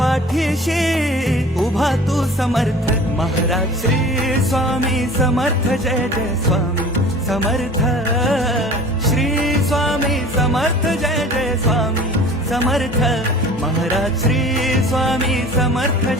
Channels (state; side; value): normal; both; correlation 0.44